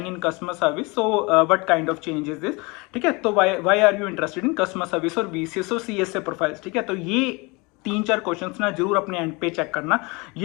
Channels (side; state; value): right; quieter; 27.0 dB